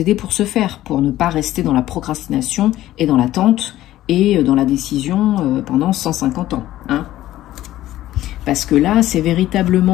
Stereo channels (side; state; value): right; quieter; 14.4 dB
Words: pour ce faire, pour ne pas rester dans la procrastination et dans l'attente et dans la décision pendant 150 ans. Hein. Parce que là, c'est